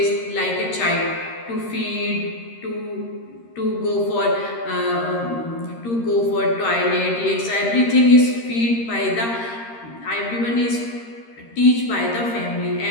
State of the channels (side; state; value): right; late; 13 ms